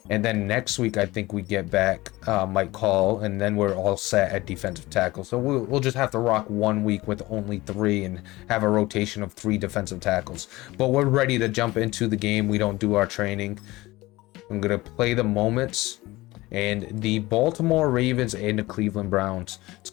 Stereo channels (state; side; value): quieter; right; 19.7 dB